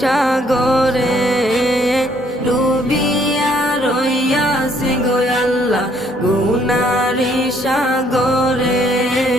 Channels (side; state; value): both; normal; correlation 0.66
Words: সাগরে ডুবিয়া রইয়াছি গো আল্লাহ গুনারি সাগরে